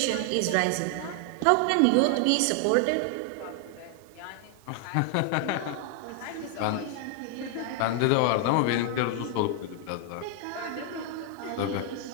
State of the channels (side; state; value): both; different; correlation 0.00